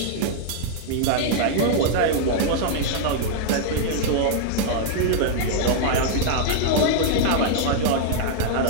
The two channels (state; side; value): different; both; correlation -0.01